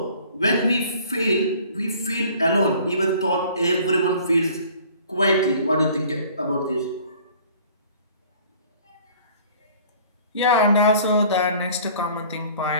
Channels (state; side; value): inverted; both; correlation -0.51